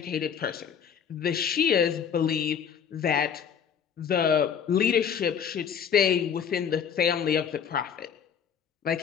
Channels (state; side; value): quieter; right; 7.6 dB